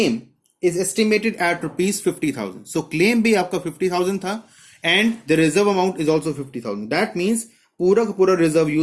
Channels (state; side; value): identical; both; correlation 1.00